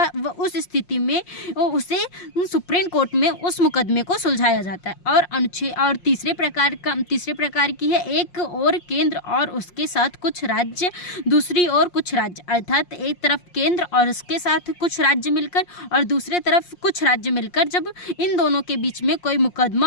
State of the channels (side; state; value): right; late; 5.6 ms